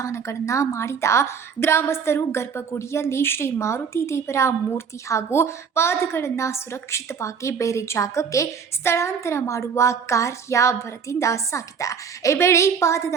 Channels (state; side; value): quieter; left; 6.4 dB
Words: ಮಾಡಿದ ಗ್ರಾಮಸ್ಥರು ಗರ್ಭಗುಡಿಯಲ್ಲಿ ಶ್ರೀ ಮಾರುತಿ ದೇವರ ಮೂರ್ತಿ ಹಾಗೂ ಪಾದಗಳನ್ನು ಸುರಕ್ಷಿತವಾಗಿ ಬೇರೆ ಜಾಗಕ್ಕೆ ಸ್ಥಳಾಂತರ ಮಾಡುವ ಕಾರ್ಯ ಭರದಿಂದ ಸಾಗಿದೆ. ಈ ವೇಳೆ